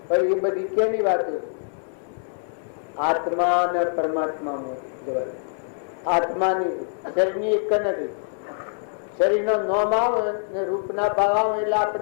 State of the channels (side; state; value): right; silent; digital silence